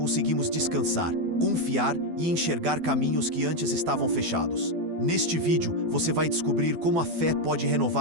descansar, confiar e enxergar caminhos que antes estavam fechados. Neste vídeo, você vai descobrir como a fé pode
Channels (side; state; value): left; late; 12 ms